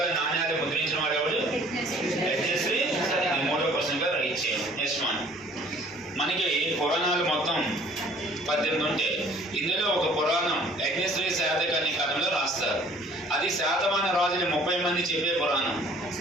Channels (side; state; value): both; normal; correlation 0.54